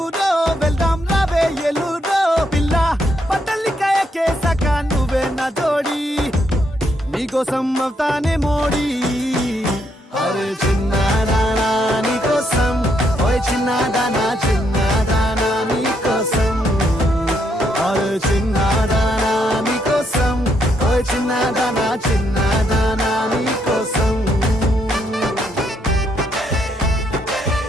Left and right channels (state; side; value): normal; both; correlation 0.75